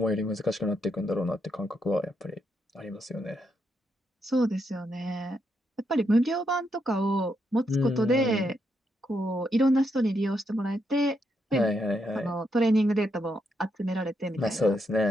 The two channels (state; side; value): normal; both; correlation 0.79